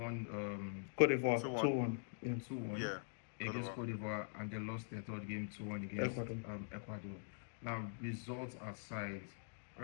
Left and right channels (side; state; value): right; silent; digital silence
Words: Cote d'Ivoire, 2-1. 2-1. Yeah, 2-1 Yeah. Good against over. Cote d'Ivoire, and they lost their third game 2-1 against Ecuador. Ecuador. Now, results aside,